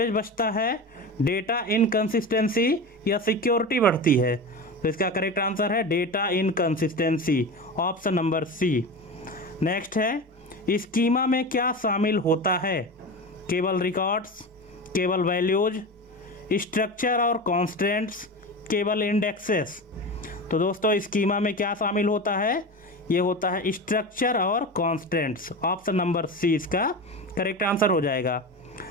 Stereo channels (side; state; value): both; normal; correlation 0.26